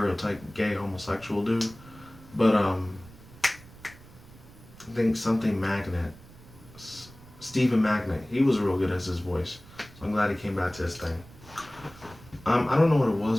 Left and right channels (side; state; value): right; noise; rumble, 21 dB below the sound